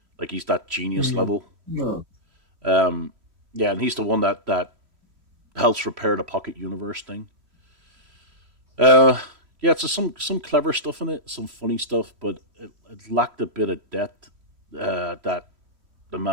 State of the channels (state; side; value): late; left; 3.0 ms